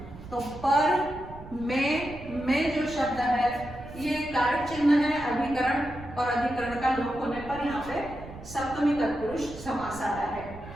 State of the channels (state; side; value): noise; right; rumble, 15 dB below the sound